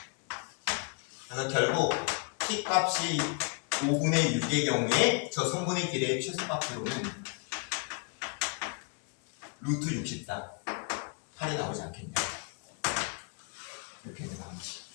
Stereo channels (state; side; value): quieter; right; 37.5 dB